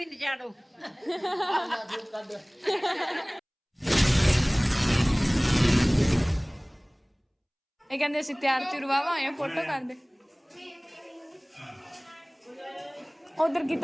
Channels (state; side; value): identical; both; correlation 1.00